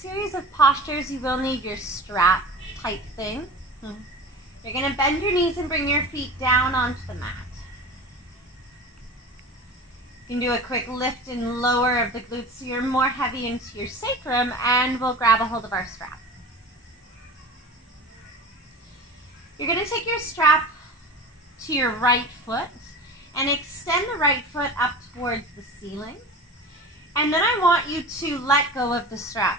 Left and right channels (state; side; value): normal; both; correlation 0.35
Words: series of postures, you will need your strap type thing. You're going to bend your knees and bring your feet down onto the mat. You can do a quick lift and lower of the glutes so you're more heavy into your sacrum, and we'll grab a hold of our strap. You're going to take your strap to your right foot and extend the right foot up towards the ceiling. And then I want you to let go of the strap.